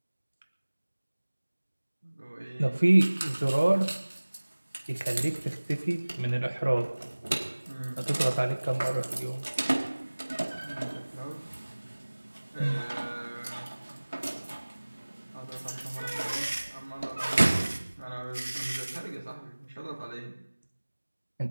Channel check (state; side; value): inverted; both; correlation -1.00